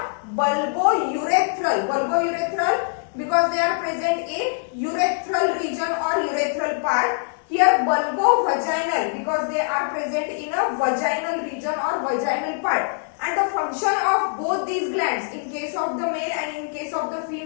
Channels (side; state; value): right; silent; digital silence